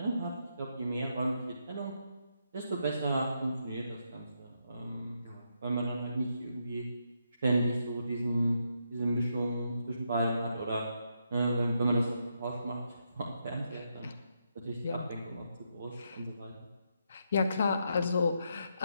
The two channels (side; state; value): both; inverted; correlation -0.80